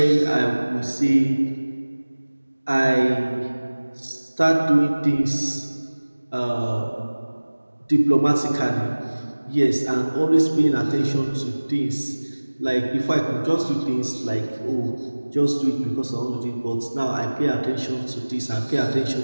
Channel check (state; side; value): inverted; both; correlation -1.00